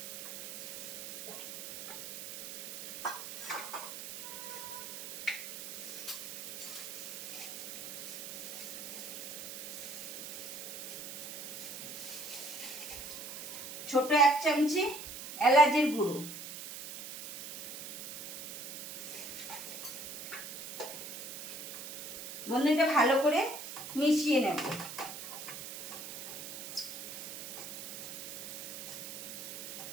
ছোট 1 চামচি এলাচের গুঁড়ো, বন্ধু এটা ভালো করে মিশিয়ে নেব।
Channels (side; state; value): right; noise; hiss, 8 dB below the sound